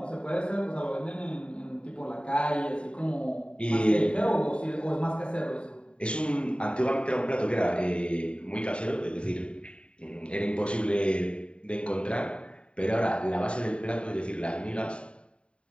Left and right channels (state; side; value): late; right; 0.056 ms